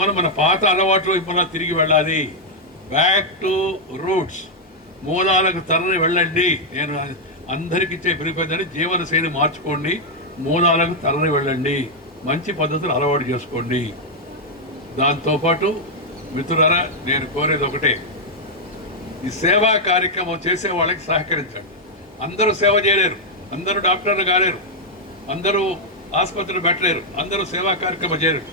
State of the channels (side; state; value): both; normal; correlation -0.02